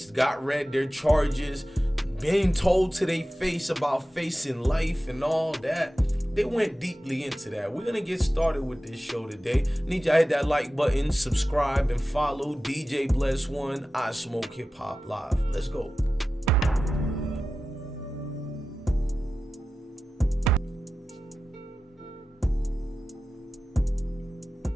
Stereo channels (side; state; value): both; normal; correlation 0.94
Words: got read their charges, being told to their face about facing life and all that. They went deeply into that. We're gonna get started with this show today. Need y'all hit that like button, subscribe, and follow DJ Bless One. I Smoke Hip Hop Live. Let's go.